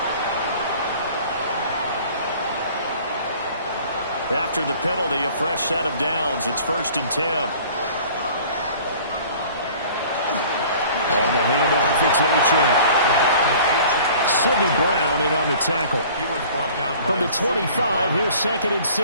After the penalty, a fresh set of downs. It's 1st and 10. On the handoff, it's Achane. Sidney Brown in on the tackle. From the 25, here's 2nd and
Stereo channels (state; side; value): inverted; both; correlation -0.49